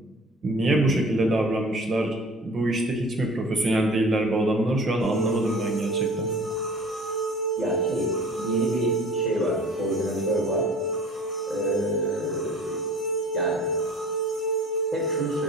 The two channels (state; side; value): normal; both; correlation 0.45